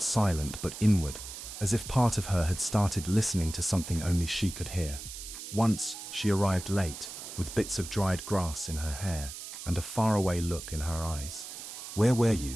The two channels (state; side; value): noise; right; hiss, 10 dB below the sound